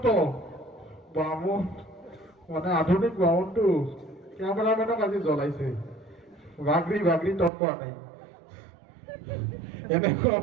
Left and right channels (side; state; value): left; drops out; at 7.5 s